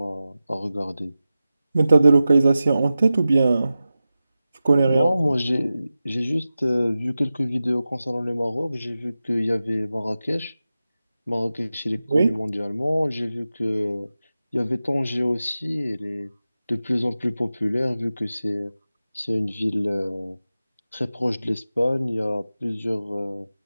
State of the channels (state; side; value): inverted; both; correlation -0.94